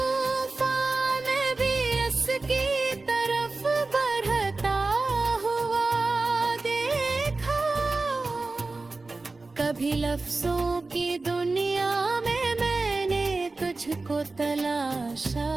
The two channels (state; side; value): quieter; left; 3.5 dB